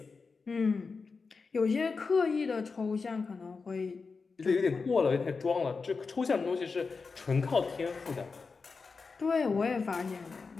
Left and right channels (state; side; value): quieter; right; 4.6 dB